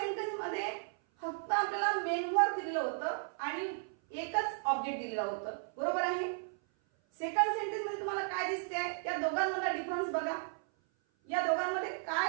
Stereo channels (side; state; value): left; silent; 55 dB below the other